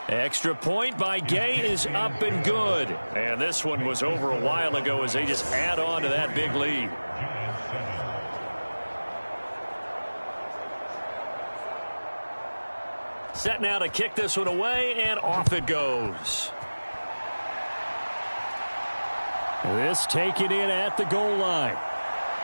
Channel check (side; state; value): both; inverted; correlation -1.00